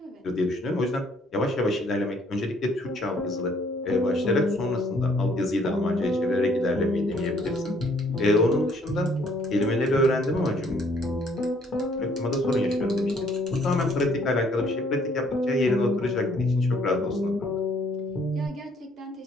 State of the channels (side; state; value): both; normal; correlation 0.63